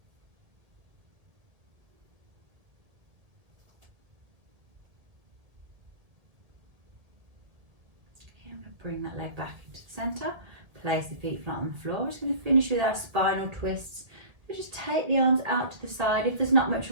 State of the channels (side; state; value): left; late; 2.0 ms